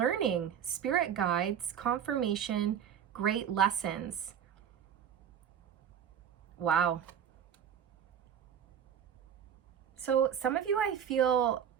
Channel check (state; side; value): quieter; left; 8.8 dB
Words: spirit guides, confirmation, great lessons. Wow. So some of you, I feel,